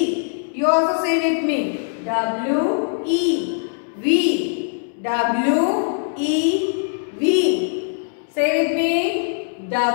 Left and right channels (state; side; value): silent; right; digital silence